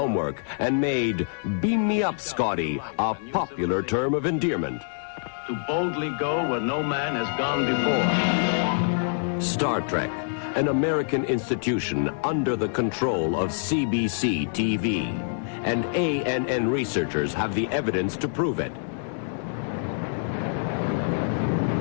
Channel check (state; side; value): silent; right; digital silence